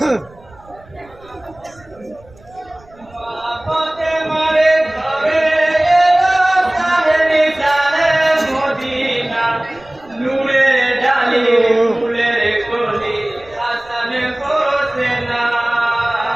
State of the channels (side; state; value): right; noise; rumble, 26 dB below the sound